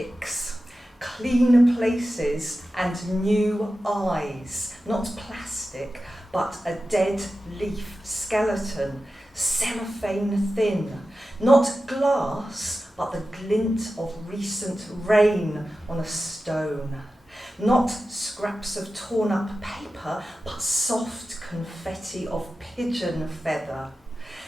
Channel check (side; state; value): both; normal; correlation 0.93